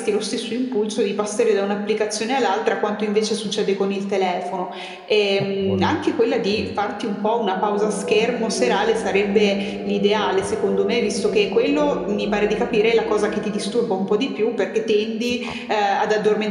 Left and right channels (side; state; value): both; identical; correlation 1.00